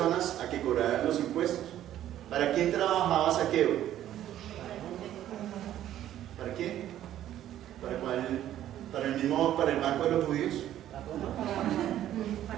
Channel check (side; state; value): left; quieter; 12.1 dB